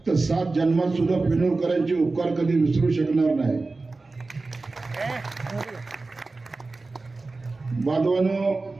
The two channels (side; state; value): left; quieter; 3.6 dB